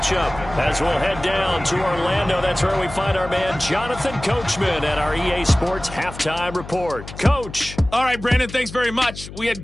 As we'll head down to Orlando, that's where we find our man Jonathan Coachman at our EA Sports Halftime Report. Coach. All right, Brandon, thanks very much. We had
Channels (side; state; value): left; noise; hum, 13 dB below the sound